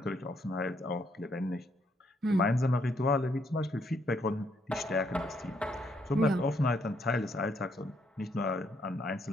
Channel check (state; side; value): normal; both; correlation 0.73